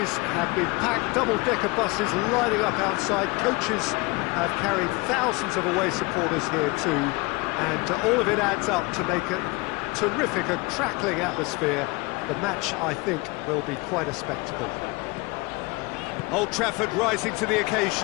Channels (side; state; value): right; quieter; 25.2 dB